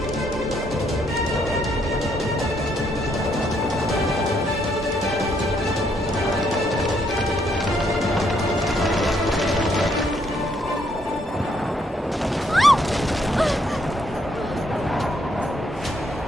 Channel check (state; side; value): normal; both; correlation 0.72